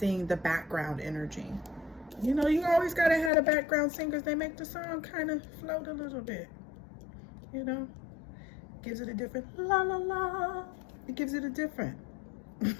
the background energy. You know, you always gotta have a background singers. They make the song kind of float a little bit. You know, gives it a different la la la. It gives it a different.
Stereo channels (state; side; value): drops out; right; at 3.3 s